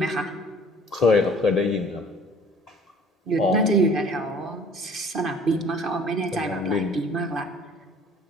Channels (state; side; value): normal; both; correlation 0.53